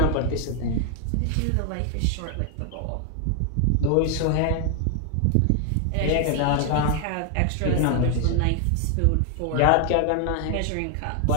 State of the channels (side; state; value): both; different; correlation 0.00